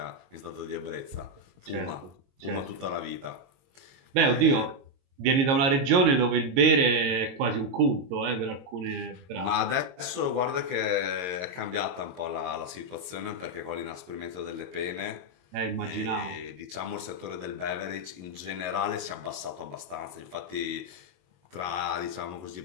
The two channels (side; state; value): left; late; 22 ms